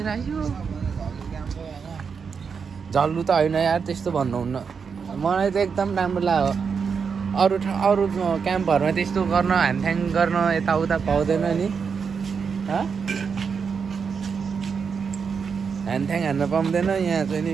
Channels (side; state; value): left; quieter; 6.0 dB